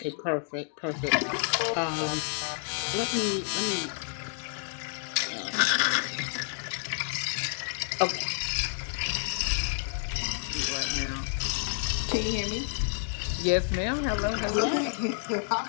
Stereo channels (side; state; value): right; silent; 58 dB below the other